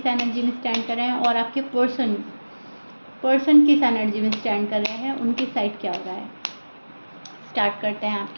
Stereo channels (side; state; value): both; inverted; correlation -1.00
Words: एनर्जी में स्टैंड कर रहे हैं और आपके पर्सन किस एनर्जी में स्टैंड कर रहे हैं, उनकी साइड क्या हो रहा है। स्टार्ट करते हैं